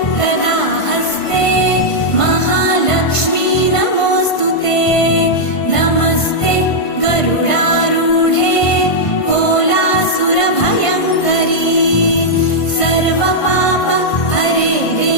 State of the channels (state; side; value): late; right; 1.5 ms